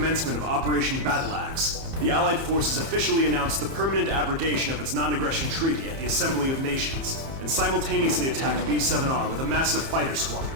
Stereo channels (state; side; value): late; left; 30 ms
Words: of Operation Battle Axe, the Allied forces officially announced the permanent abrogation of its non-aggression treaty at the Assembly of Nations, and simultaneously attacked B-7R with a massive fighter